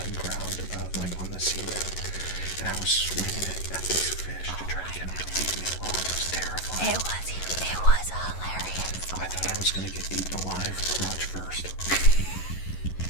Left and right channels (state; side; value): late; right; 11 ms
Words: ground, like on the seabed, and I was swinging it at these fish to try to get them to leave me alone. It was terrifying. It was hilarious. I thought I was going to get eaten alive, crotch first.